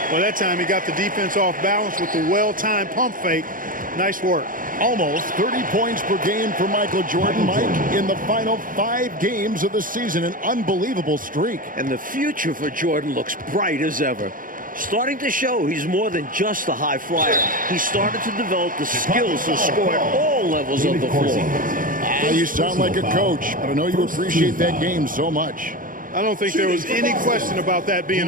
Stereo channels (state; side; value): late; left; 0.40 ms